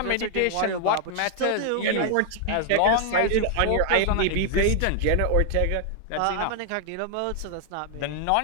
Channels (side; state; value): both; different; correlation 0.00